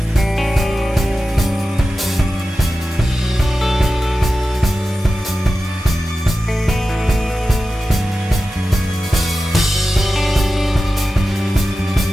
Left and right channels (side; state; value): both; normal; correlation 0.93